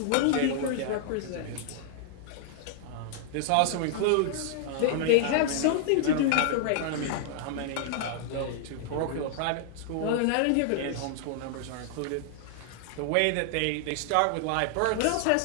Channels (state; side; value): different; both; correlation -0.01